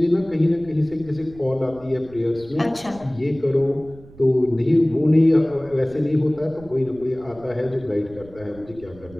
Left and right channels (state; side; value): noise; right; rumble, 21 dB below the sound